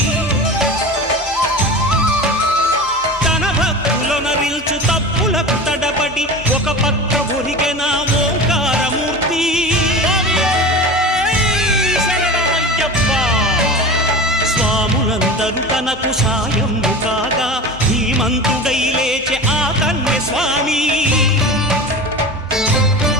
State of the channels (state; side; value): normal; both; correlation 0.31